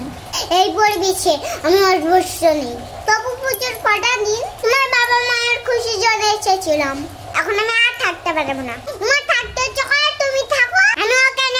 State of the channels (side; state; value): both; identical; correlation 1.00